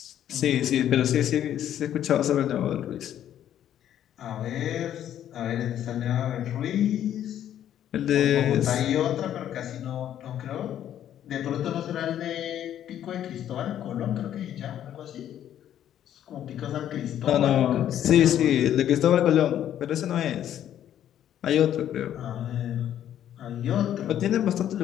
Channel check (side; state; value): right; quieter; 10.9 dB